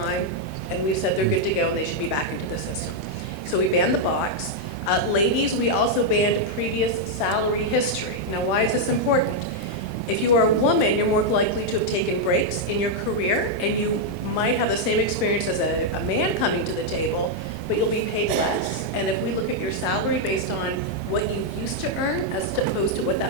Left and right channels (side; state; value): both; normal; correlation -0.01